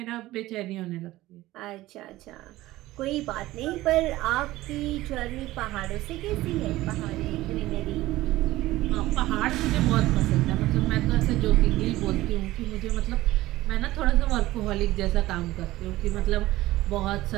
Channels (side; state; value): left; quieter; 17.0 dB